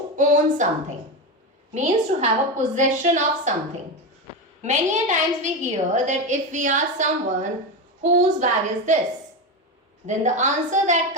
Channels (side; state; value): both; normal; correlation 0.16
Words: own something, means to have a possession of something. Many a times we hear that if we ask someone, whose bag is this? Then the answer that